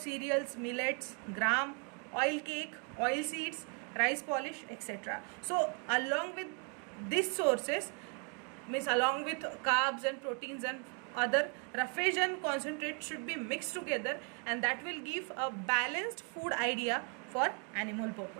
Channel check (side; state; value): left; quieter; 38.0 dB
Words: millets, gram, oil cake, oil seeds, rice polish, etc. So along with these sources, means along with carbs and proteins and other, roughage and concentrate should be mixed together, and that will give a balanced food idea for animal